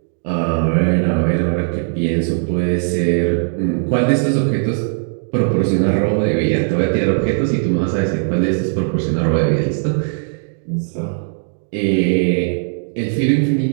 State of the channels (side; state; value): left; silent; digital silence